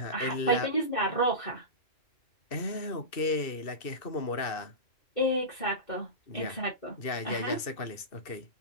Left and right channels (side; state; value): right; late; 2.6 ms